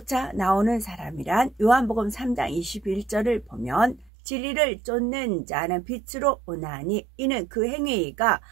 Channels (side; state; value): left; drops out; at 4.1 s